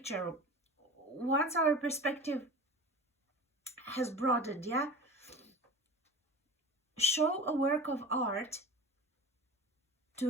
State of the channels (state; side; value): normal; both; correlation 0.35